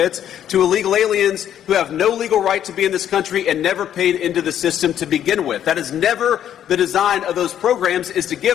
to illegal aliens who have no legal right to be in this country and never paid into the system to begin with. That is never the design of those programs, is to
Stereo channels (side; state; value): right; quieter; 10.3 dB